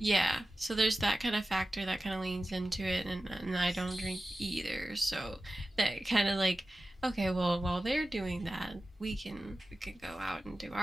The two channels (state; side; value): normal; both; correlation 0.95